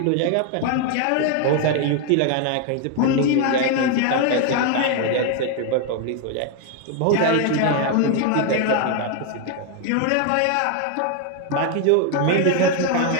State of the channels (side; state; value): both; different; correlation 0.01